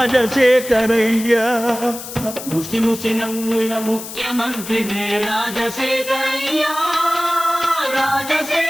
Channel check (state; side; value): noise; left; hiss, 11 dB below the sound